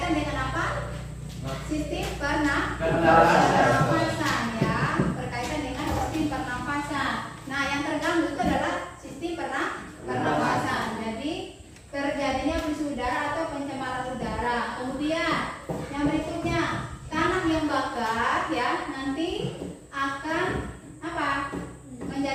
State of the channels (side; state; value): both; identical; correlation 1.00